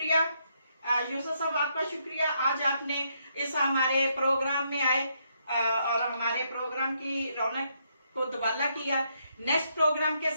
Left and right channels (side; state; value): both; inverted; correlation -0.76